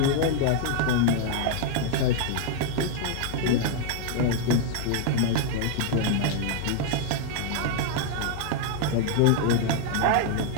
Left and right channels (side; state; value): both; different; correlation -0.01